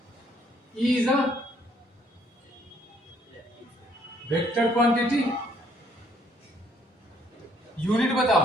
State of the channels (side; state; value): both; normal; correlation 0.65